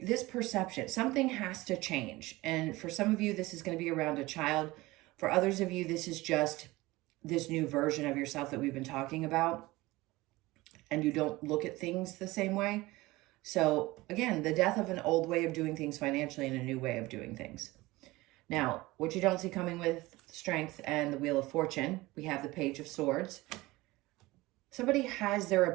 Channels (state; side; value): quieter; left; 20.1 dB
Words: perception, something has to change. And for some of you, this is going to be around a child. For others of you, this is just this new version of yourself that we've been talking about. And you don't look at things the same way. So again, the death of an old way of doing things financially and a new way of doing things. Now, what you don't see coming with Strength and the Wheel of Fortune, we have the Page of Swords. Somebody has their